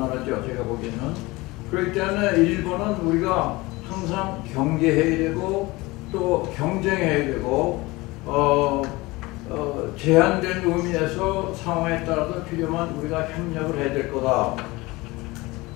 제가 보기에는. 그렇기 때문에 일본은 우리가 항상 경계해야 되고 또 경쟁해야 되고 제한된 의미에서 상황에 따라서 필요한 우리가 협력을 해야 될 거다.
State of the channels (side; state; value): right; quieter; 21.9 dB